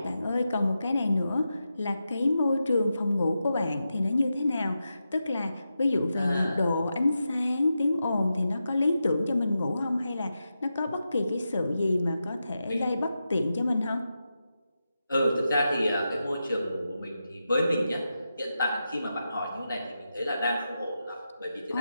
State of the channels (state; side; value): inverted; both; correlation -0.89